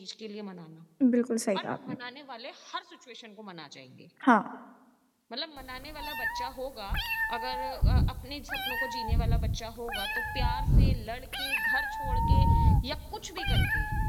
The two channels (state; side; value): identical; both; correlation 1.00